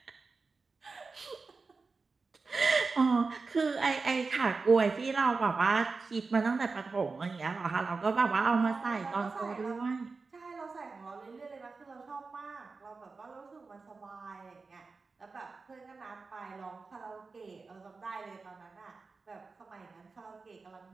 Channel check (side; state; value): left; quieter; 4.2 dB